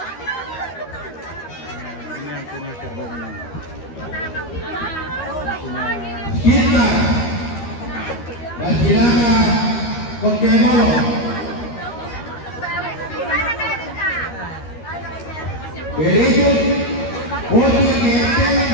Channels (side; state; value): right; late; 13 ms